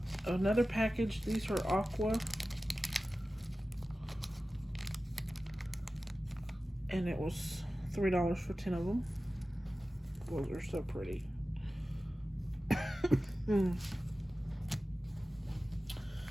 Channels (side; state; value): both; normal; correlation 0.95